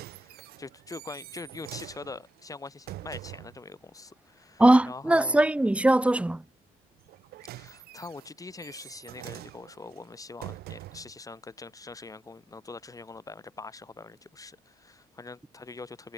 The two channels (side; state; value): both; normal; correlation 0.91